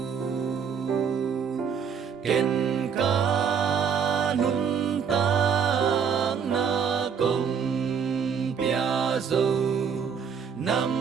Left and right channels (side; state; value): left; quieter; 6.8 dB